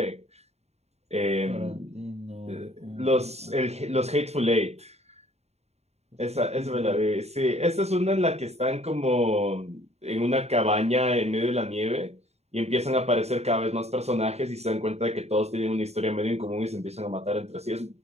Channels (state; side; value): late; left; 0.31 ms